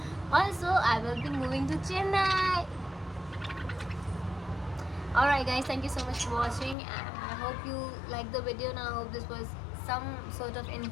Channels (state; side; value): drops out; right; at 6.8 s